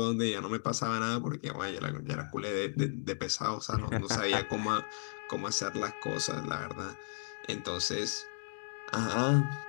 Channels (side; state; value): right; silent; digital silence